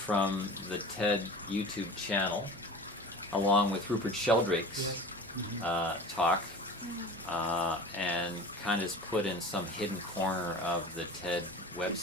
the TED YouTube channel, along with Rupert Sheldrake's talk, and kind of is put in some hidden corner of the TED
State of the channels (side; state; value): both; normal; correlation 0.37